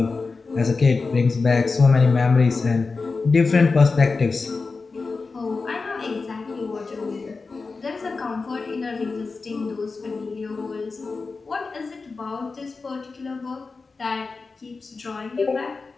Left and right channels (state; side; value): quieter; right; 4.2 dB